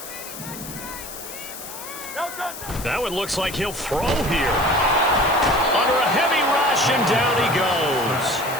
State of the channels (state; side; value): noise; left; hiss, 11 dB below the sound